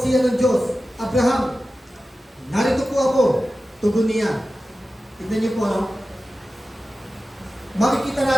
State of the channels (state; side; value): normal; both; correlation 0.94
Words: siya ng Diyos, Abraham, narito po ako, tugon niya. Tignan niyo po, no? Makikita